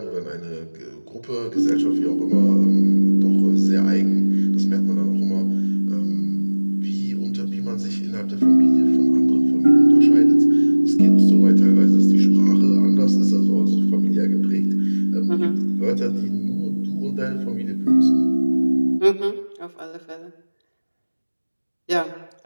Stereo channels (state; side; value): inverted; both; correlation -1.00